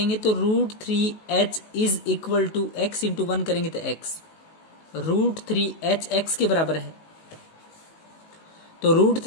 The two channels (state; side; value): late; right; 19 ms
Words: तो √3h is equal to x into 1 करेंगे तो x, √3h x के बराबर है। तो